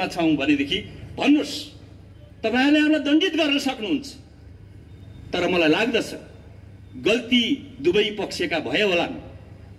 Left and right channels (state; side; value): identical; both; correlation 1.00